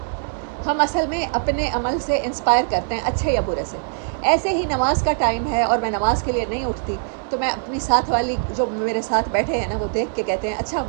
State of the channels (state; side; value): silent; left; digital silence